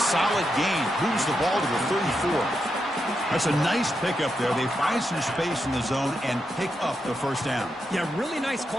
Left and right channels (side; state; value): both; normal; correlation 0.85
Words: gain. Moves the ball to the 34. That's a nice pickup there. They find some space in the zone and pick up the first down. Yeah, really nice